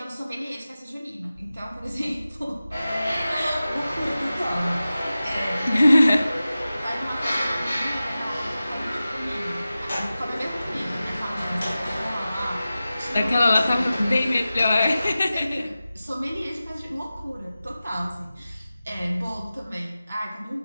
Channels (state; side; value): inverted; both; correlation -0.95